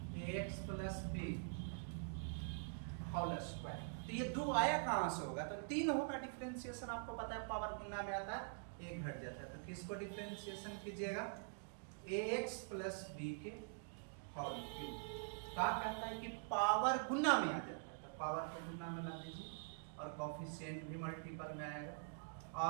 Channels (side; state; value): left; silent; digital silence